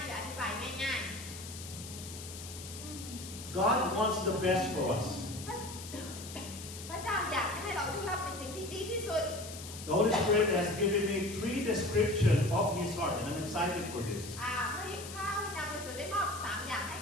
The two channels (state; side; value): noise; left; hiss, 12 dB below the sound